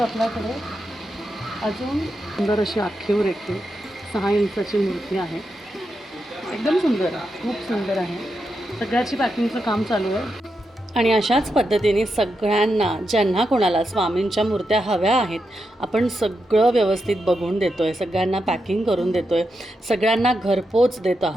आपल्याकडे अजून सुंदर अशी आखीवर येते 6 इंचाची मूर्ती आहे. एकदम सुंदर आहे, खूप सुंदर आहे. सगळ्याची पॅकिंगचं काम चालू आहे. आणि अशाच पद्धतीने सगळ्यांना ज्यांना कोणाला स्वामींच्या मूर्त्या हव्या आहेत आपण सगळं व्यवस्थित बघून देतो आहे, सगळ्यांना पॅकिंग करून देतो आहे, सगळ्यांना घरपोच देत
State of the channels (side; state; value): both; normal; correlation 0.86